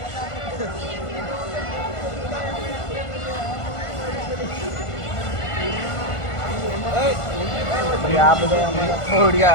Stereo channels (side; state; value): right; late; 1.5 ms